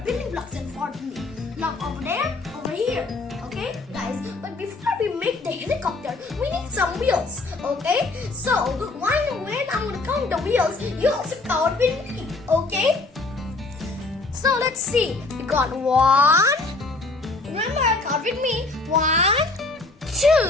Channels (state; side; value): quieter; right; 3.4 dB